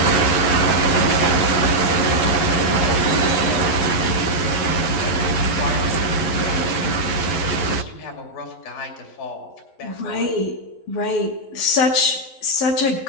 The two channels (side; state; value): right; late; 11 ms